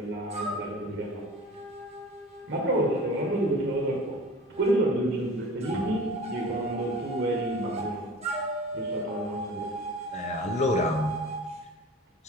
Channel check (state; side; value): normal; both; correlation 0.40